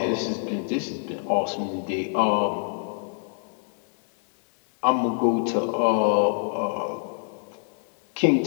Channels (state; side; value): silent; right; 61 dB below the other